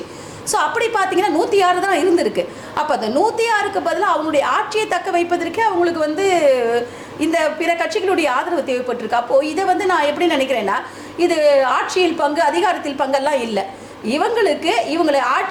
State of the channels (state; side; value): identical; both; correlation 1.00